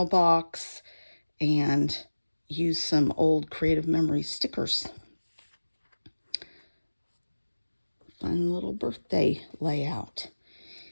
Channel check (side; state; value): both; inverted; correlation -1.00